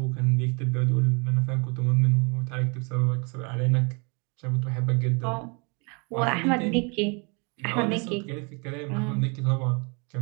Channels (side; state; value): left; quieter; 32.9 dB